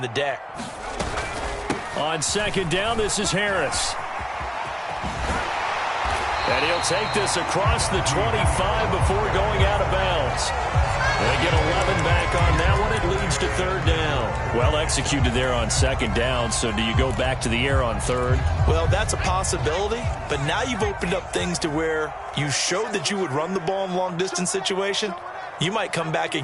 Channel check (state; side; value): identical; both; correlation 1.00